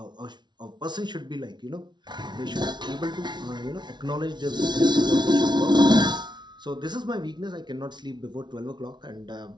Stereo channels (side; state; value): left; late; 0.21 ms